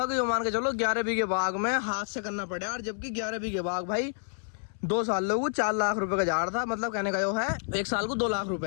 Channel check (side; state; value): right; silent; 59 dB below the other